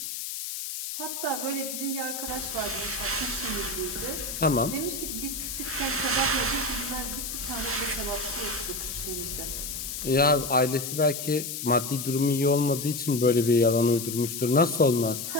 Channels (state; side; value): noise; left; hiss, 6 dB below the sound